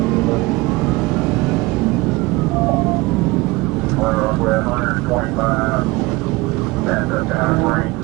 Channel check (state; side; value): quieter; left; 22.1 dB